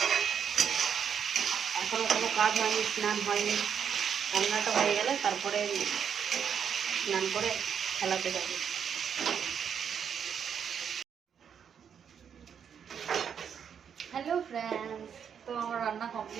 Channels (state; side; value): quieter; left; 7.7 dB